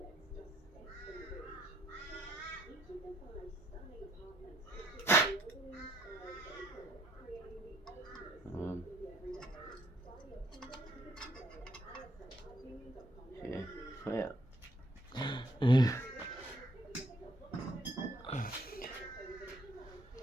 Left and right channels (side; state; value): both; normal; correlation 0.68